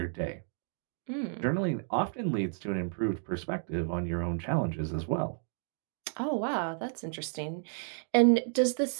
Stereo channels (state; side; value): silent; left; digital silence